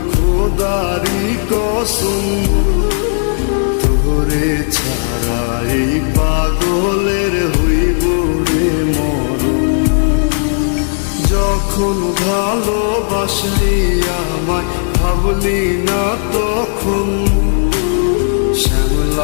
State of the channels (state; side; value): silent; right; 65 dB below the other